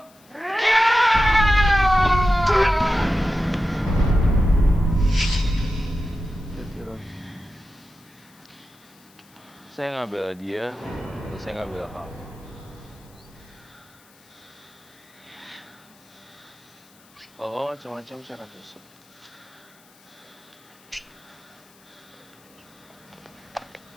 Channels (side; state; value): left; noise; hiss, 28 dB below the sound